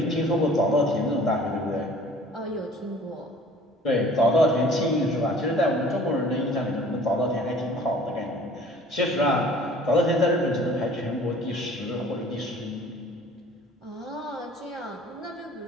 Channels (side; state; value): both; normal; correlation 0.50